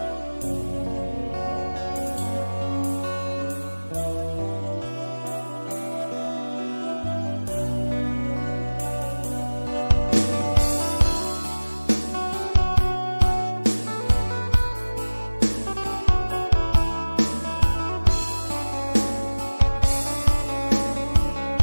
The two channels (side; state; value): both; inverted; correlation -1.00